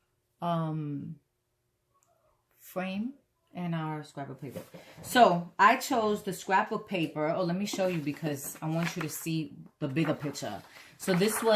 frame and our scrapbook paper. So I chose the scrapbook paper. Oh, let me show you because I want you to see the bigger picture. So this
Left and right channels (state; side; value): identical; both; correlation 1.00